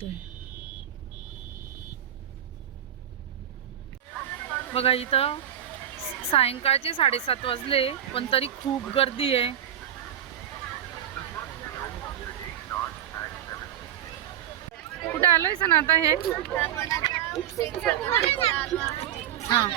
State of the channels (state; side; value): quieter; left; 10.8 dB